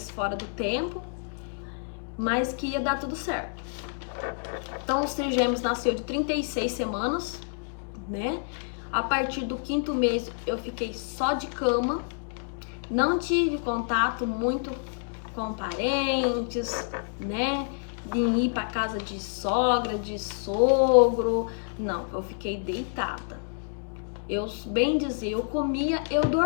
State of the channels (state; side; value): silent; right; digital silence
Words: fora do tempo, mas que ia dar tudo certo. Então os trigêmeos nasceu de 36 semanas, né? A partir do 5º mês eu fiquei só de cama, não tive contato muito com parentes, né? De ir para casa de sogra, de sogro, não, eu fiquei deitada. Eu, bem dizer, eu comia, eu